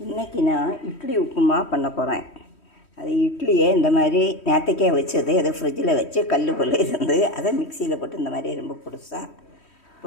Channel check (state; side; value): late; right; 3.1 ms